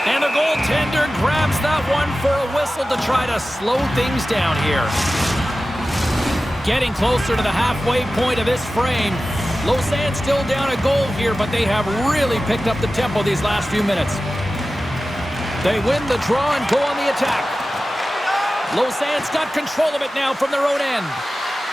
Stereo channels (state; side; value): normal; both; correlation 0.95